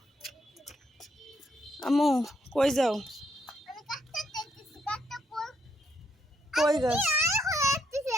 আম্মু কই যাও? আমি কাটতে দেখতেছি, কাটতে কই? কই গাছ? আয় হয়ে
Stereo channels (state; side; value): normal; both; correlation 0.76